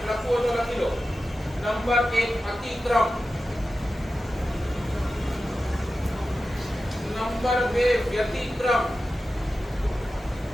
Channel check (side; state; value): both; normal; correlation 0.93